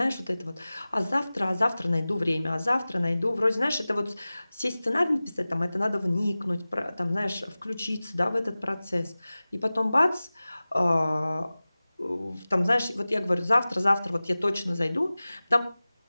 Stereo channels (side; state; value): both; inverted; correlation -0.98